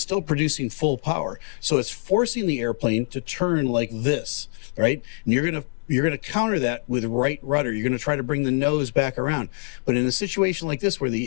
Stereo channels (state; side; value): silent; right; digital silence